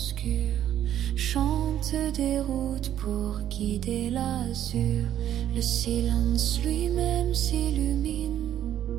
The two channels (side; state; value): left; quieter; 11.1 dB